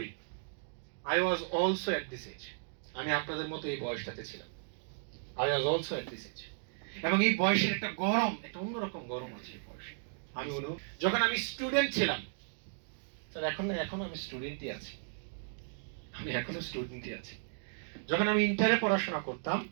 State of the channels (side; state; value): left; silent; digital silence